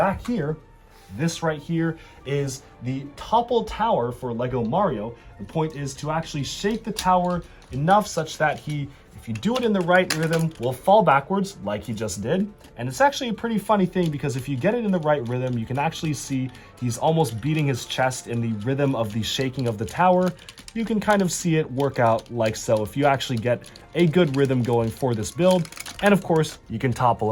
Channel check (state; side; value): identical; both; correlation 1.00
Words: here. This right here is the topple tower for LEGO Mario. The point is to actually shake the tower enough such that he, if you do it in the right rhythm, will fall backwards like he just did. And it's actually a pretty funny thing because if you get it in the right rhythm, you can actually see he's almost beating his chest in the rhythm of the shaking of the tower. You can kind of see it work out like so if you actually get a good rhythm going for this build. And of course, you can topple